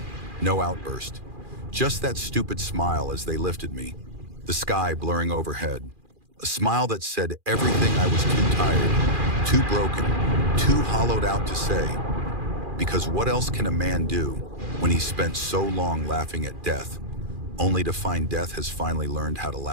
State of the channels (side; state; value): left; late; 2.4 ms